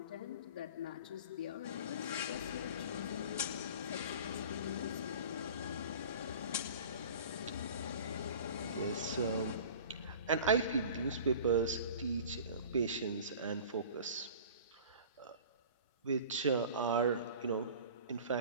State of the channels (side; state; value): both; inverted; correlation -0.41